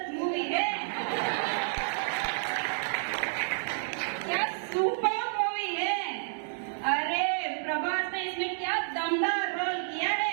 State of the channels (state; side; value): silent; left; digital silence